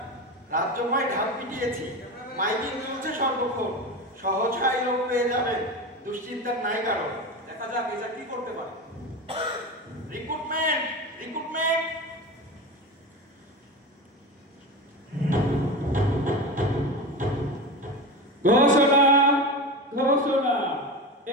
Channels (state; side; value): normal; both; correlation 0.24